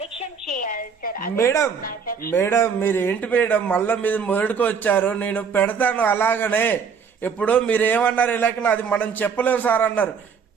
చేయాలి సార్. మేడం మేడం మీరు ఏంటి మేడం మళ్ళీ మీరు మొదటికి వచ్చారు, నేను పెడతాను అలాగనే. ఇప్పుడు మీరు ఏమన్నారు ఇలాగ అది మనం చెప్పలేము సార్ అన్నారు.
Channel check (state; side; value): quieter; left; 6.2 dB